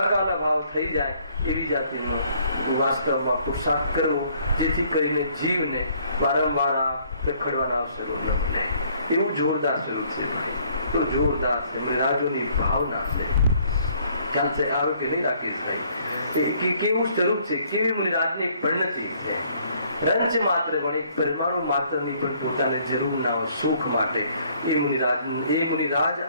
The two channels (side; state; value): both; inverted; correlation -0.63